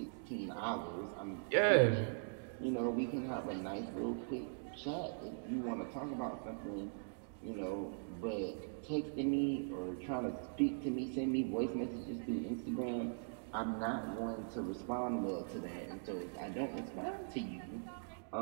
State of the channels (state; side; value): silent; left; digital silence